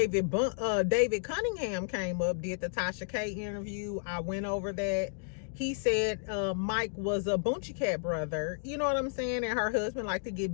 Cunningham came up, did the Tasha K interview. I went over that. He said Mike was a Boonchie Cat brother. You know what I'm saying? And her husband liked to get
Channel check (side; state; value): right; silent; digital silence